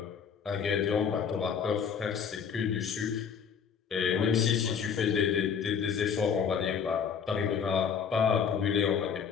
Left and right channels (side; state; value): right; quieter; 6.9 dB